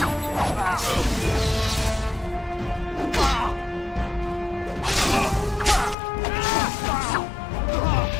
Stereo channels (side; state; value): right; drops out; at 6.0 s